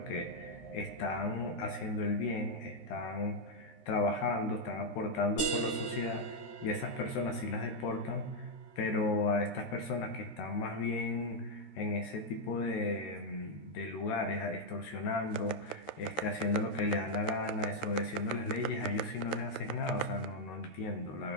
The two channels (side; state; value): right; late; 13 ms